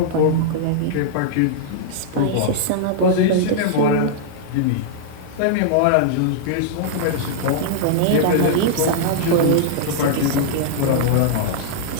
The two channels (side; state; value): both; different; correlation -0.01